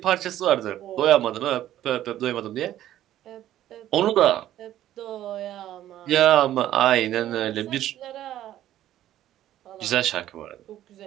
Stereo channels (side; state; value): left; quieter; 12.7 dB